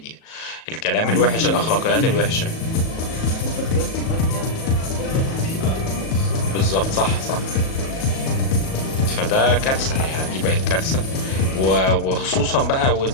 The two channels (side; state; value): right; late; 37 ms